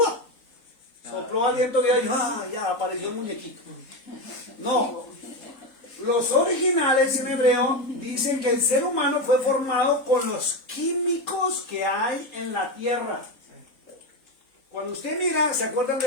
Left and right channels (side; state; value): right; late; 3.8 ms